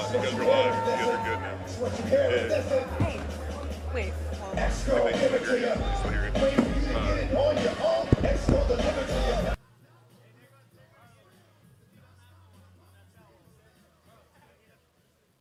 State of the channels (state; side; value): identical; both; correlation 1.00